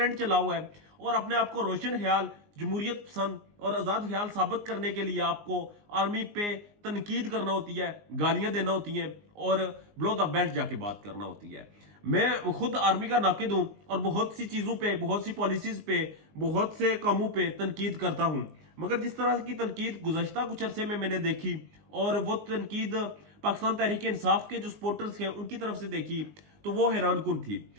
चला हुआ है और अपने आप को रोशन ख्याल, जमहूरियत पसंद और आजाद ख्याल साबित करने के लिए आपको आर्मी पे तनकीद करना होती है, गालियां देना होती हैं और ब्लो द बेल्ट जाके बात करना होती है। मैं खुद आर्मी का नाकिद हूं और बहुत सी चीजों पे, बहुत सी पॉलिसीज पे, बहुत से कामों पे तनकीद करता हूं, मगर जिस तरह की तनकीद गुज़श्ता कुछ अरसे में मैंने देखी और वो तनकीद पाकिस्तान तहरीक इंसाफ के जो सपोर्टर्स हैं उनकी तरफ से देखी तो वो हैरान कुन थी।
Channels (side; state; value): left; late; 19 ms